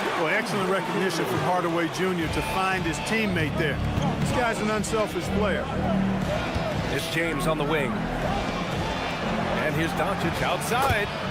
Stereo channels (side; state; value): both; identical; correlation 1.00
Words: Well, excellent recognition from Hardaway Jr. to find his teammate there. This guy's an unselfish player. It's James on the wing. And here's Doncic outside.